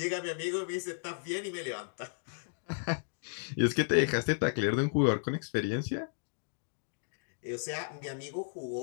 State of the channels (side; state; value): right; silent; digital silence